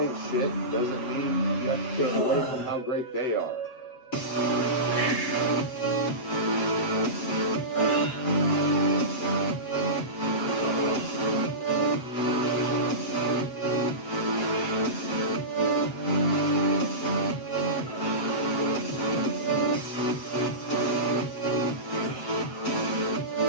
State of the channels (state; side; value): late; right; 7.8 ms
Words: shit doesn't mean you have to take away from how great they are.